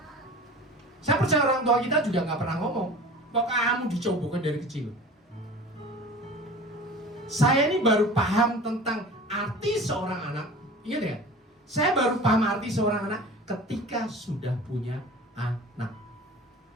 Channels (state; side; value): normal; both; correlation 0.39